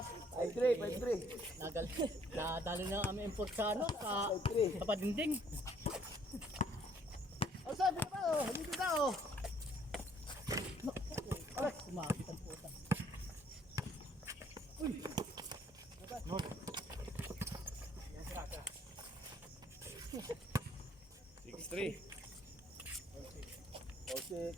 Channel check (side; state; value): both; normal; correlation 0.63